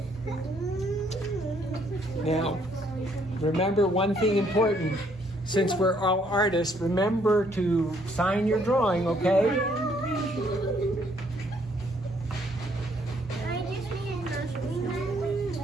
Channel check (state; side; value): normal; both; correlation 0.67